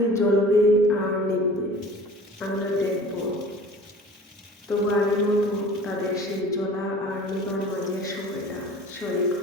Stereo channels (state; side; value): normal; both; correlation 0.44